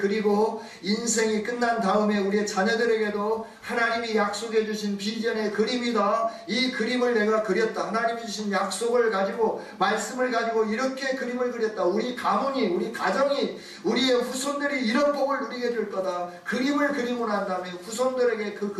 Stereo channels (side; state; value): both; identical; correlation 1.00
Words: 인생이 끝난 다음에 우리의 자녀들에게도 하나님이 약속해 주신 비전의 그림이다. 이 그림을 내가 그렸다. 하나님이 주신 약속을 가지고 말씀을 가지고 이렇게 그림을 그렸다. 우리 가문이 우리 가정이 우리의 후손들이 이런 복을 누리게 될 거다. 그림을 그리고 난 다음에 후손들에게 그